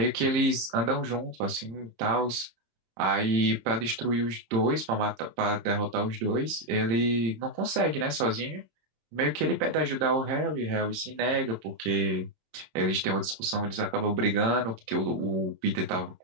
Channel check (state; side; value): late; left; 26 ms